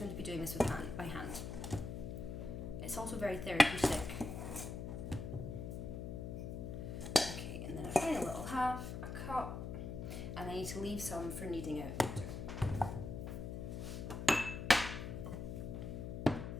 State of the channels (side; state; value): left; noise; hum, 5 dB below the sound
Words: to be doing this by hand. It's also very therapeutic. Okay, and then a final little half, a cup, and I need to leave some for kneading out later.